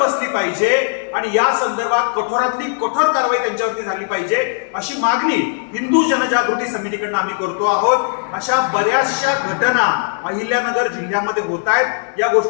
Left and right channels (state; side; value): silent; right; digital silence